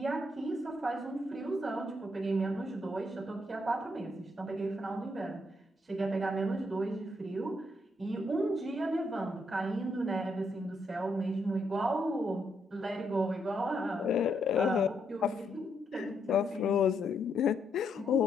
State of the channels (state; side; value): normal; both; correlation 0.77